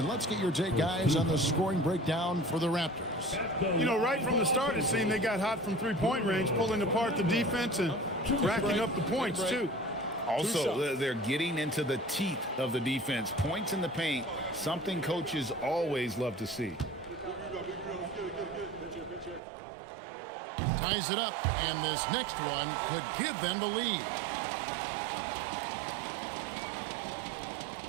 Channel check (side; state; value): left; drops out; at 19.4 s